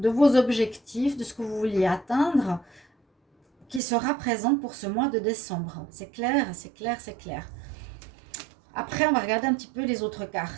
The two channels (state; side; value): drops out; left; at 3.8 s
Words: vos objectifs, de ce que vous vouliez atteindre, qui sera présente pour ce mois de décembre. C'est clair, c'est clair, c'est clair. Après, on va regarder un petit peu les autres